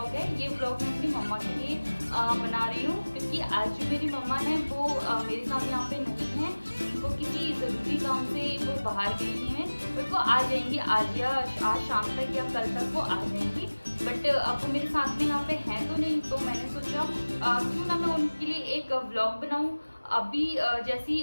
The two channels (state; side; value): inverted; both; correlation -1.00